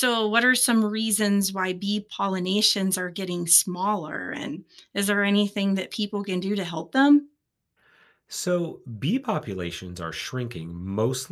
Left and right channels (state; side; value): identical; both; correlation 1.00